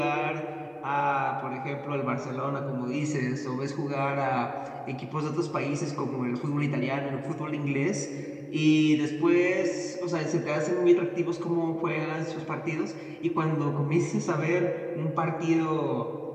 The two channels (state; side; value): identical; both; correlation 1.00